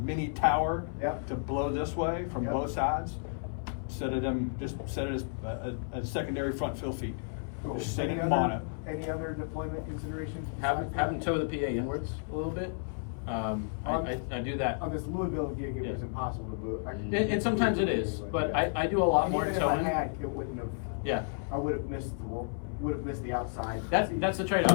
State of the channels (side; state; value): right; silent; 56 dB below the other